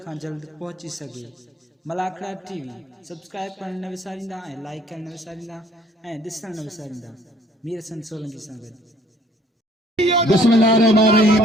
खां जल्द पहुची सघे। मलाखड़ा टीवी सब्सक्राइब करण न विसारींदा ऐं लाइक करण न विसारींदा ऐं ॾिसण न विसारींदा। मीर हसन सोलंकी सां गॾु।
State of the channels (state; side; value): normal; both; correlation 0.59